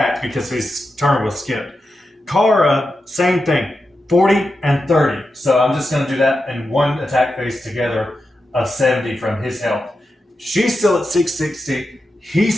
because his turn was skipped. Kara, same thing, 40 and 30. So I'm just going to do that in one attack phase together of 70 from his health. She's still at 660.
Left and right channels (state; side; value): normal; both; correlation 0.89